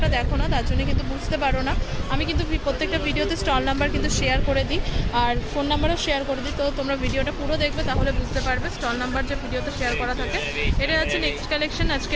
দেখো না, তার জন্য কিন্তু বুঝতে পারো না। আমি কিন্তু প্রত্যেকটা ভিডিওতে স্টল নাম্বার কিন্তু শেয়ার করে দিই আর ফোন নাম্বারও শেয়ার করে দিই, তো তোমরা ভিডিওটা পুরো দেখবে তাহলে বুঝতে পারবে স্টল নাম্বার যে ভিডিওতে শেয়ার করা থাকে। এটা যাচ্ছে নেক্সট কালেকশন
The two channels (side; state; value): both; identical; correlation 1.00